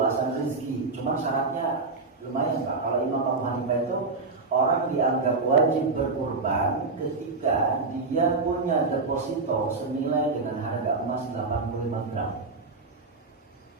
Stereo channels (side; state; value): left; quieter; 3.8 dB